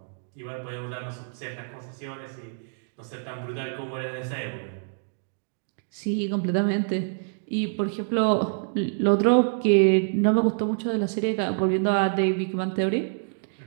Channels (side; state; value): left; silent; digital silence